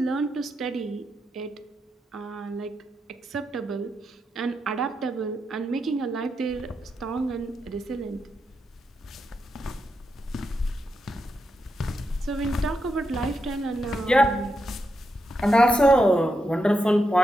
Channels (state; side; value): normal; both; correlation 0.85